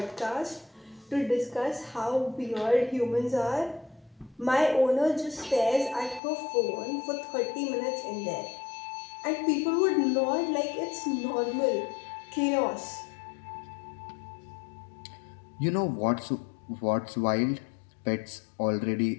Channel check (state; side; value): drops out; right; at 6.2 s